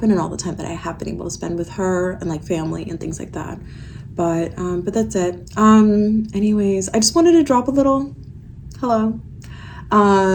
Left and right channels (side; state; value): both; identical; correlation 1.00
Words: and all the time that I have been able to spend with her and like family and things like that. But that's it. Anyways, I just wanted to drop a little hello.